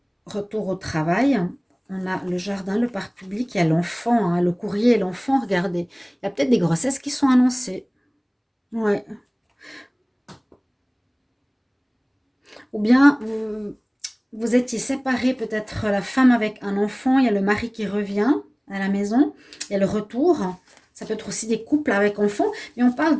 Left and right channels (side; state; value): both; identical; correlation 1.00